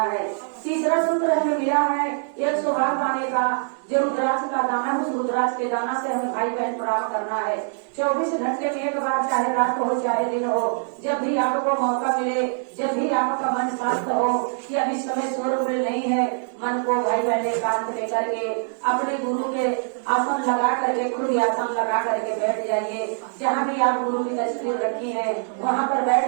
है। तीसरा सूत्र हमें मिला है 108 दाने का, जो रुद्राक्ष का दाना है उस रुद्राक्ष के दाना से हमें भाई बहन प्रणाम करना है। 24 घंटे में एक बार, चाहे रात हो चाहे दिन हो, जब भी आपको मौका मिले, जब भी आपका मन शांत हो कि अभी समय शोर नहीं है, मन को भाई बहन एकांत में करके अपने गुरु के आसन लगा करके खुद आसन लगा करके बैठ जाइए। जहाँ भी आप गुरु की तस्वीर रखी है वहाँ पर बैठ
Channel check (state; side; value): silent; left; 62 dB below the other